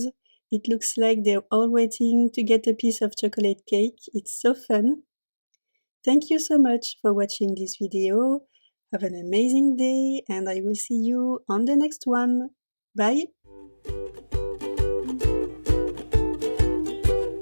It looks like they're all waiting to get a piece of chocolate cake. It's so fun. Thank you so much for watching this video. Have an amazing day, and I will see you on the next one. Bye!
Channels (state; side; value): inverted; both; correlation -1.00